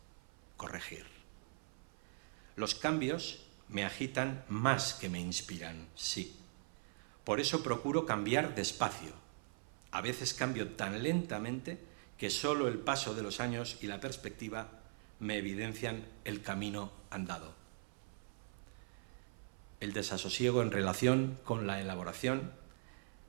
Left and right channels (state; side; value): silent; left; 50 dB below the other